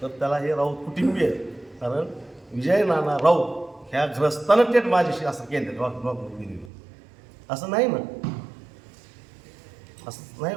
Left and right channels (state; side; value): drops out; left; at 6.7 s